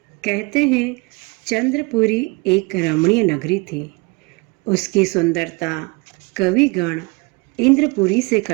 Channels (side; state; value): left; quieter; 26.9 dB